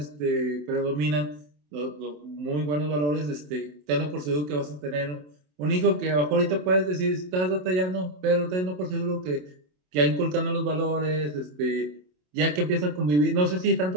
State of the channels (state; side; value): late; left; 27 ms